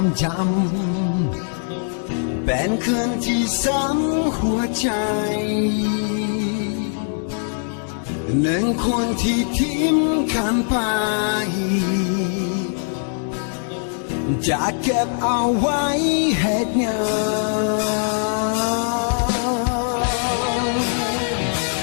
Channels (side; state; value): right; silent; digital silence